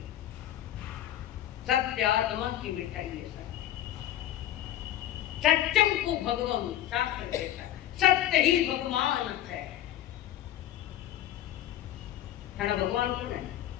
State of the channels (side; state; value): right; quieter; 12.5 dB